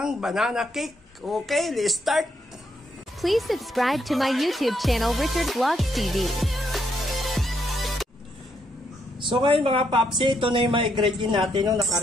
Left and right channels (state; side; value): normal; both; correlation 0.76